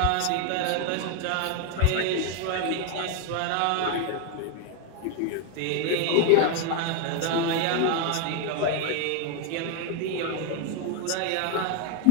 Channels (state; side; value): different; both; correlation 0.01